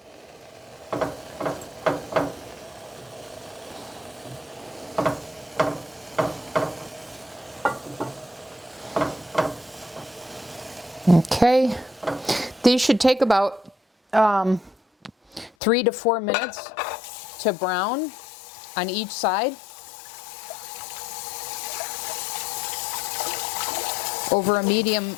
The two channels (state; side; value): drops out; right; at 15.5 s